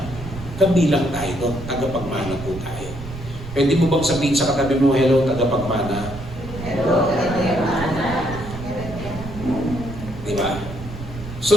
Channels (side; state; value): right; noise; rumble, 12 dB below the sound